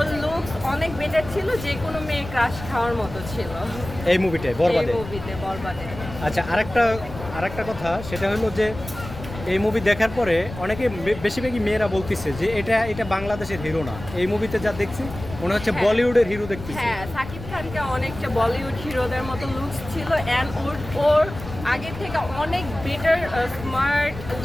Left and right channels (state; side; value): noise; left; rumble, 12 dB below the sound